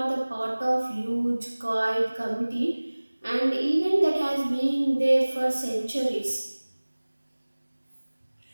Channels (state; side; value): inverted; both; correlation -1.00